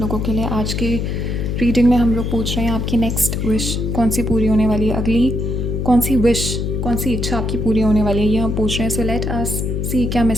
लोगों के लिए। आज के रीडिंग में हम लोग पूछ रहे हैं आपकी नेक्स्ट विश कौन सी पूरी होने वाली है, अगली कौन सी विश, कौन सी इच्छा आपकी पूरी होने वाली है, ये हम पूछ रहे हैं। सो लेट अस सी क्या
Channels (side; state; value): left; noise; hum, 1 dB below the sound